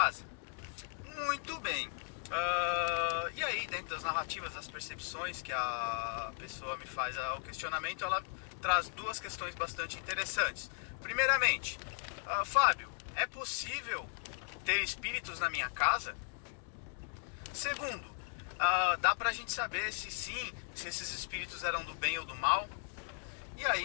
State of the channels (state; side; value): silent; right; 53 dB below the other